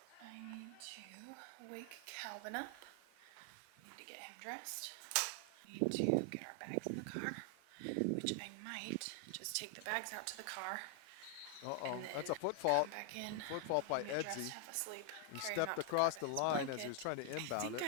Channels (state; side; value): different; both; correlation 0.00